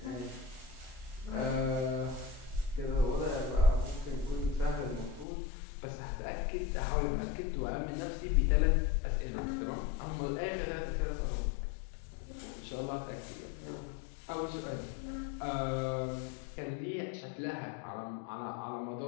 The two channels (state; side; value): drops out; right; at 5.2 s